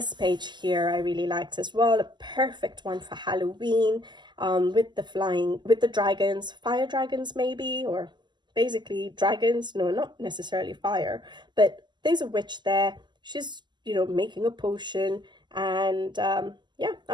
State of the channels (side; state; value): left; late; 0.21 ms